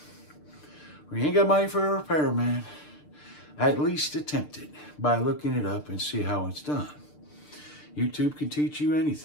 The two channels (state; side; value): late; right; 6.7 ms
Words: or you ain't got money for a repairman, at least attempt it by looking it up and see how it's done. YouTube can teach you